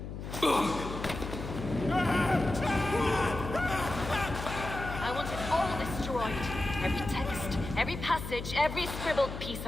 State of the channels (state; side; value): noise; left; hum, 8 dB below the sound